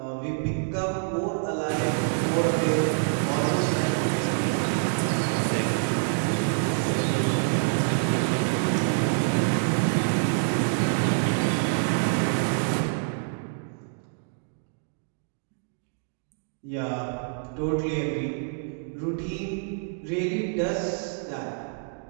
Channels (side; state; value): left; silent; digital silence